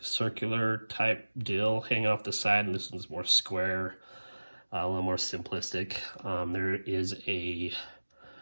type deal hanging off the side, and this one's more square, a little more simplistic. There is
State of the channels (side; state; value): both; inverted; correlation -1.00